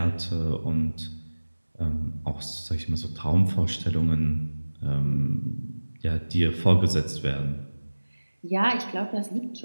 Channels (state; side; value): inverted; both; correlation -1.00